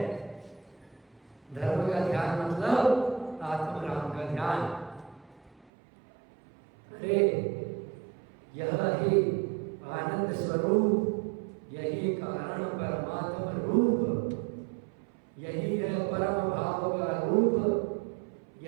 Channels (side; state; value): left; drops out; at 5.7 s